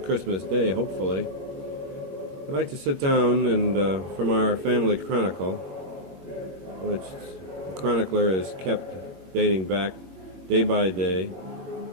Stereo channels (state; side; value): late; left; 21 ms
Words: Christmas Day, hopefully, I'd like to sit down and, from our family chronicle, which the chronicler is kept dating back day by day